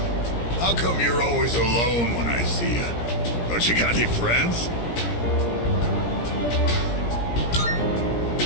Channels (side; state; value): right; late; 17 ms